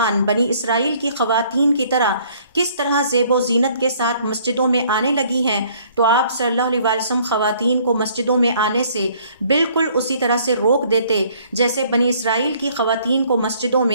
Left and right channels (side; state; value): both; inverted; correlation -0.59